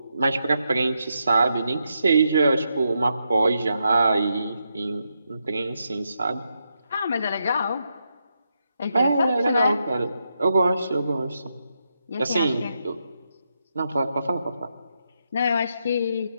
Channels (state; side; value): inverted; both; correlation -0.83